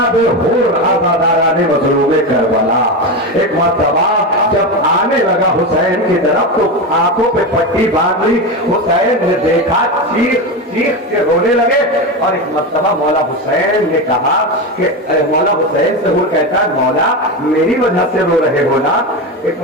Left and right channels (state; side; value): normal; both; correlation 0.18